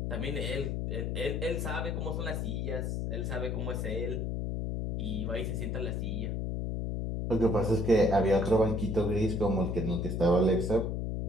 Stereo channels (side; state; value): left; noise; hum, 1 dB below the sound